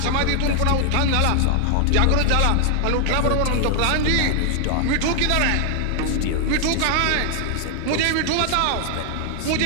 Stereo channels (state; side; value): different; both; correlation 0.00